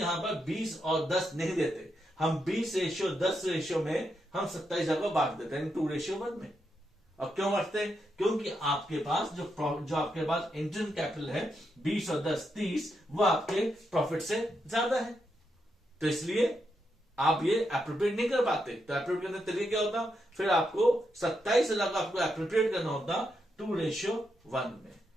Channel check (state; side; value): normal; both; correlation 0.83